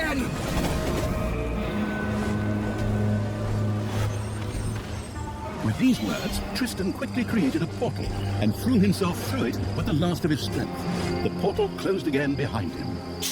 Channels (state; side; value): identical; both; correlation 1.00